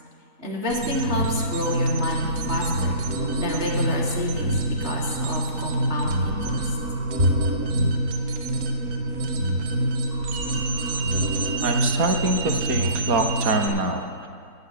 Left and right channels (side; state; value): left; late; 4.2 ms